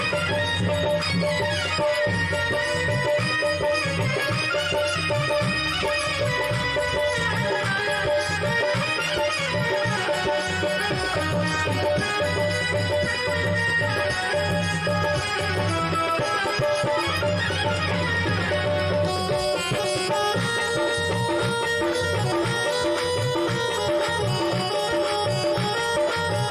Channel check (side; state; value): both; identical; correlation 1.00